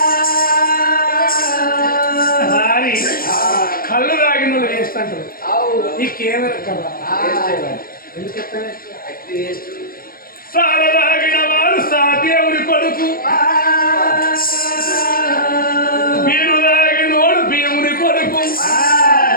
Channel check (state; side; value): late; right; 0.42 ms